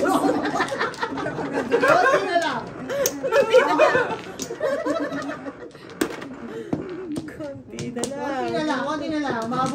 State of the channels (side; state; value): both; identical; correlation 1.00